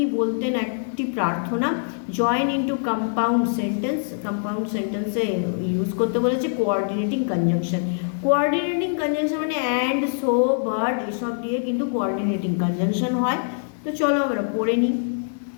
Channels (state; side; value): silent; right; 63 dB below the other